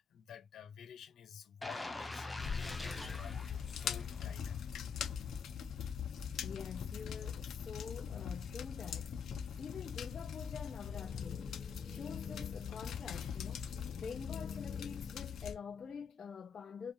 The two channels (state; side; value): quieter; right; 6.4 dB